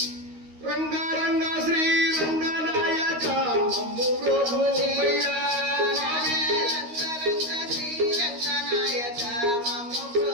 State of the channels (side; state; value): left; late; 13 ms